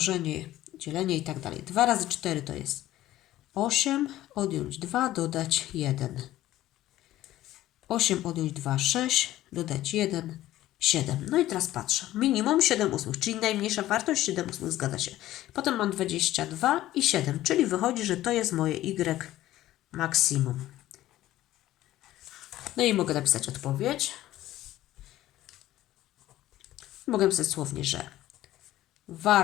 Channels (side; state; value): right; quieter; 14.7 dB